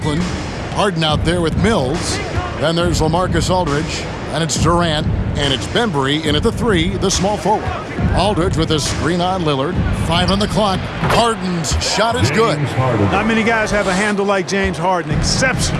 Harden out there with Mills. Then there's LaMarcus Aldridge. And it's Durant. And it's Bembry in at the 3, the small forward. Aldridge with a screen on Lillard. 5 on the clock. Harden's shot is good. Not many guys have a handle like James Harden.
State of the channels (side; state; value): both; identical; correlation 1.00